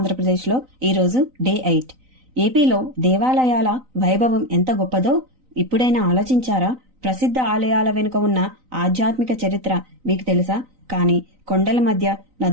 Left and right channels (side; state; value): left; late; 3.9 ms